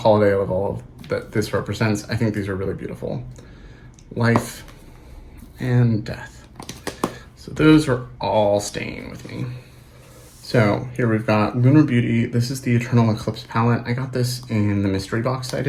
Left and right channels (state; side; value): identical; both; correlation 1.00